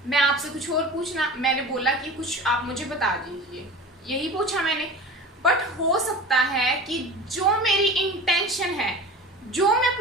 मैं आपसे कुछ और पूछना, मैंने बोला कि कुछ आप मुझे बता दीजिए, यही पूछा मैंने। बट हो सकता है कि जो मेरी इंटेंशन है, जो मैं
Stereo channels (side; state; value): both; normal; correlation 0.35